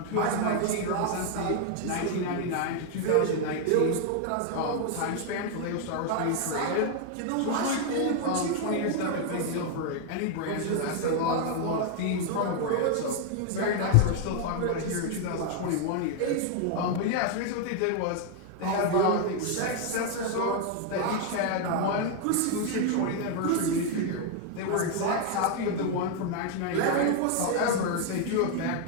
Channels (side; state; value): both; different; correlation 0.00